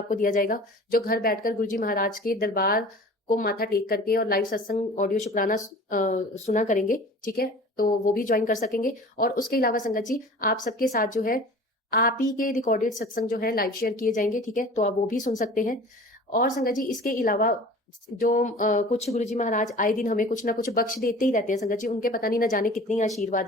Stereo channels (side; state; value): both; normal; correlation 0.42